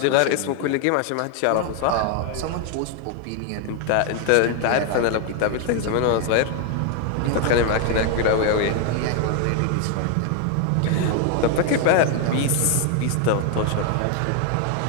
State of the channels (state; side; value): different; both; correlation 0.00